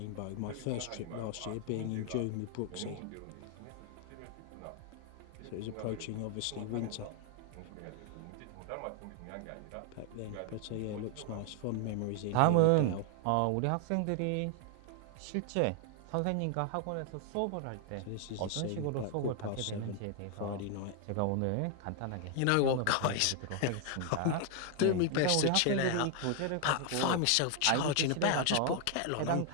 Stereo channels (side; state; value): both; different; correlation 0.00